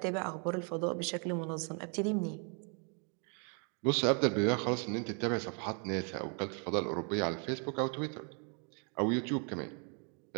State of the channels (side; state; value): left; quieter; 38.2 dB